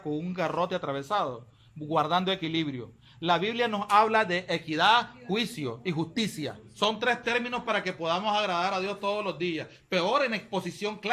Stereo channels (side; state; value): both; identical; correlation 1.00